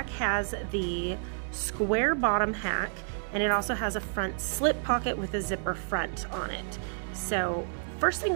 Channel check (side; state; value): left; silent; digital silence